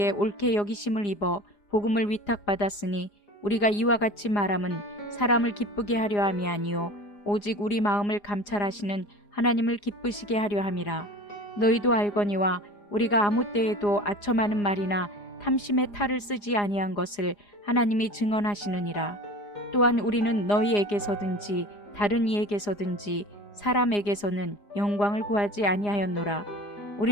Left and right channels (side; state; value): right; late; 4.9 ms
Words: 옳게 여기심을 입어 복음을 위탁받았으니 우리가 이와 같이 말함은 사람을 기쁘게 하려 함이 아니요 오직 우리 마음을 감찰하시는 하나님을 기쁘시게 하려 함이라. 너희도 알거니와 우리가 아무 때에도 아첨하는 말이나 탐심의 탈을 쓰지 아니한 것을 하나님이 증언하시느니라. 또한 우리는 너희에게서든지 다른 이에게서든지 사람에게서는 영광을 구하지 아니하였노라.